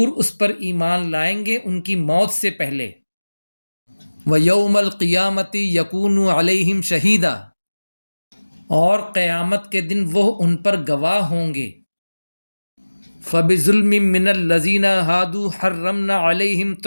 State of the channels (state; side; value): inverted; both; correlation -1.00